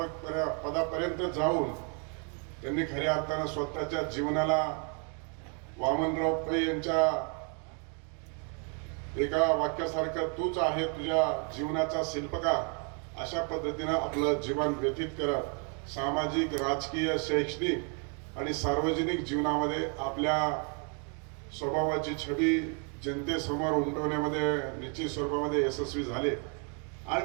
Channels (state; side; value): quieter; left; 38.9 dB